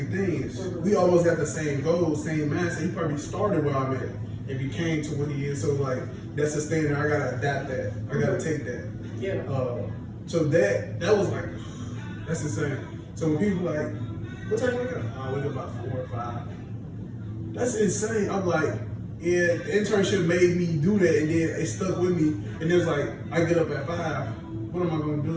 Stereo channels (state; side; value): identical; both; correlation 1.00